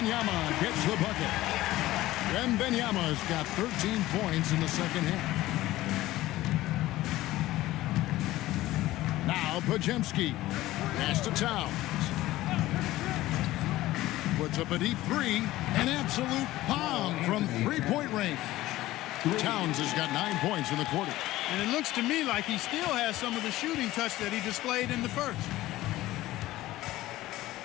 gets the bucket. Wembanyama's got 13 points in the second half. Now Pajemski. Pass to Towns. Puts up a deep three. An absolute bomb from three-point range. Towns has got 9 points in the quarter. And it looks to me like he still has some of the shooting touch that he displayed in the first.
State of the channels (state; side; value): quieter; right; 16.4 dB